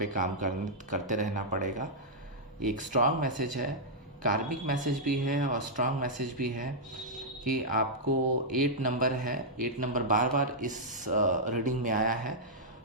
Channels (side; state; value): both; normal; correlation -0.09